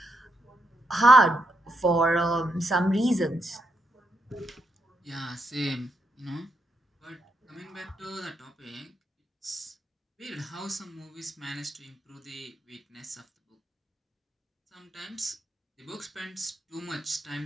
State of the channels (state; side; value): normal; both; correlation 0.80